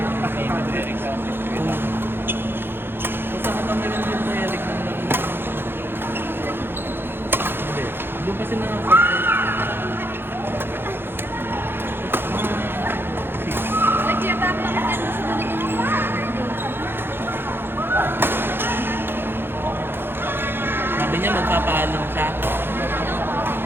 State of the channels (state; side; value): late; left; 0.10 ms